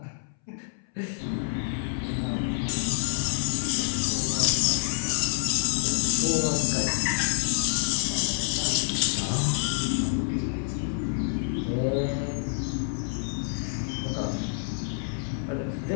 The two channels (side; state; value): right; silent; 60 dB below the other